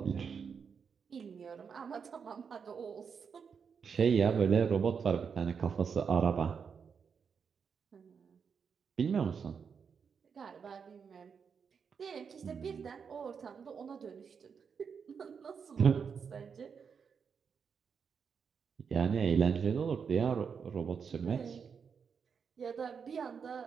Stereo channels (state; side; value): quieter; left; 6.4 dB